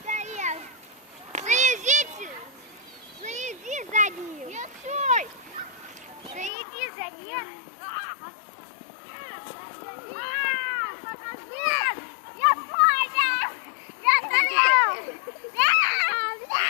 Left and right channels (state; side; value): drops out; right; at 6.5 s